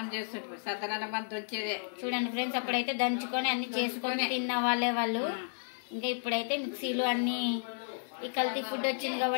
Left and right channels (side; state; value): right; silent; digital silence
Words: చేస్తుంటారు. సద్దనం అంత వచ్చేదే. చూడండి ఫ్రెండ్స్, అప్పుడైతే దంచుకొని అన్ని చేసుకొని తిన్న వాళ్ళే వాళ్ళు. ఇంకా ఇప్పుడైతే మిక్సీలు అన్ని ఈ కల్తీ ఫుడ్ వచ్చింది